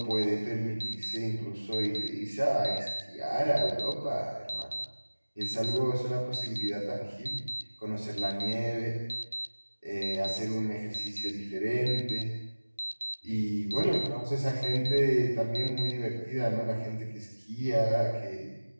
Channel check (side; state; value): both; inverted; correlation -1.00